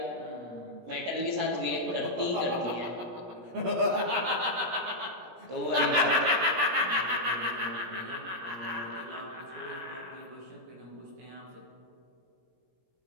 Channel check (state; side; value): late; left; 17 ms